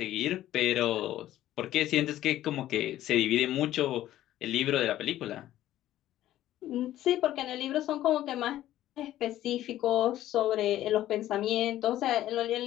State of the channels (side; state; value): right; quieter; 13.5 dB